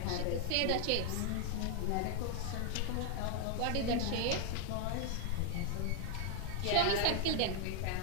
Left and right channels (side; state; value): both; different; correlation 0.00